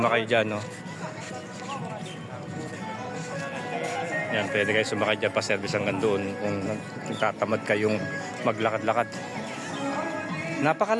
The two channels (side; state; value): both; identical; correlation 1.00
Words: dyan, no? Yan, pwede kayo sumakay dyan, pa-service hanggang doon kung tatamad kayong maglakad-lakad.